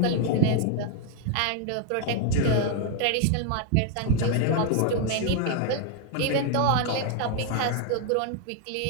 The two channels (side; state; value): both; different; correlation 0.00